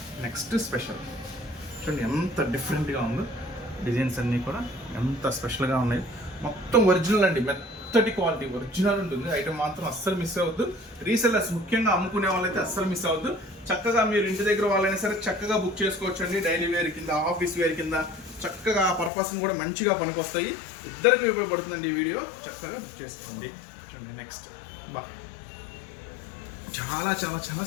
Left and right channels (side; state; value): right; drops out; at 19.1 s